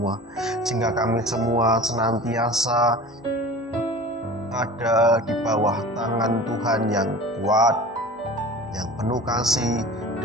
sehingga kami semua senantiasa ada di bawah tangan Tuhan yang kuat, yang penuh kasih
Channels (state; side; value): normal; both; correlation 0.38